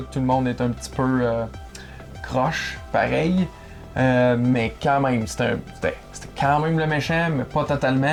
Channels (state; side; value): identical; both; correlation 1.00